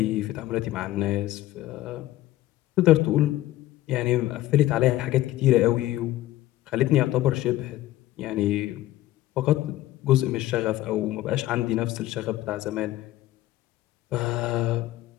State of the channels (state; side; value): quieter; right; 15.3 dB